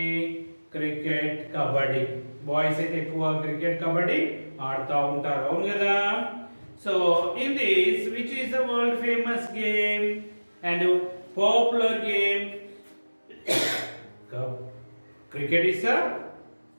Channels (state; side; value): inverted; both; correlation -1.00